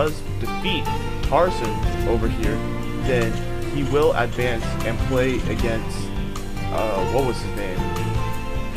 defeat Tarson over here, then he will advance and play against, what was his name?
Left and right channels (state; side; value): identical; both; correlation 1.00